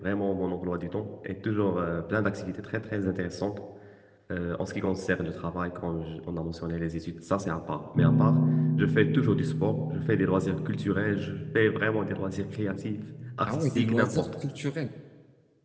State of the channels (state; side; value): identical; both; correlation 1.00